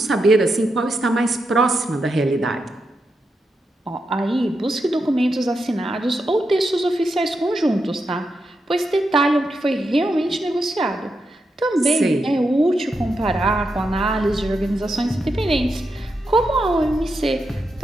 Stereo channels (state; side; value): normal; both; correlation 0.86